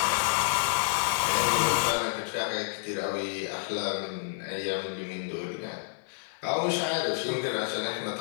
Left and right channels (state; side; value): silent; right; digital silence